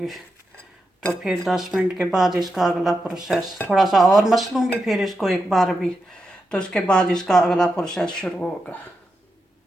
तो फिर 10 मिनट के बाद इसका अगला प्रोसेस थोड़ा सा और मस लूँगी, फिर इसको एक बार भी, तो उसके बाद इसका अगला प्रोसेस शुरू होगा।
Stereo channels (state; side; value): normal; both; correlation 0.87